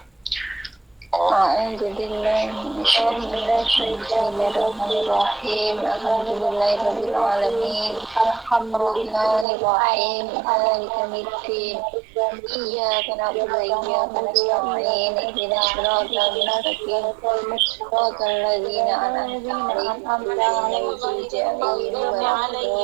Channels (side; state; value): left; drops out; at 9.5 s